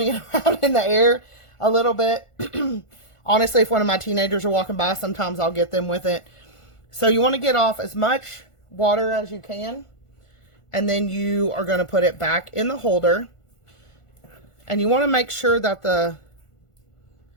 it around in the air a little bit. Honestly, if one of my teenagers are walking by, sometimes I'll get them with it. So you want to get off as much water as you can. And then you are going to put it back in the holder. And you want to make sure that the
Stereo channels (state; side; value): late; right; 1.5 ms